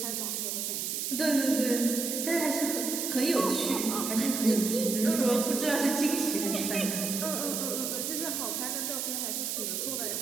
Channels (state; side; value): noise; right; hiss, 2 dB below the sound